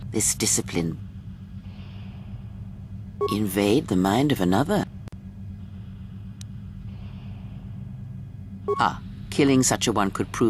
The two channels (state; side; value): identical; both; correlation 1.00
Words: This discipline. Invade the mind of another. Ah, killing such a one could